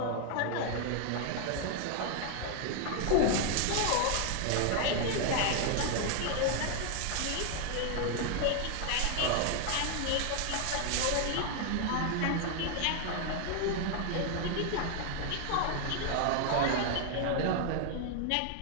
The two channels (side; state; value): both; different; correlation 0.00